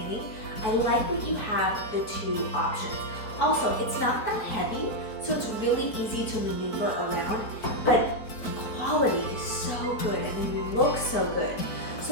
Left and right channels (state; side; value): late; right; 4.5 ms